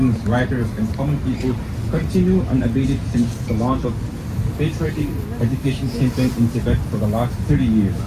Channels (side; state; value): both; identical; correlation 1.00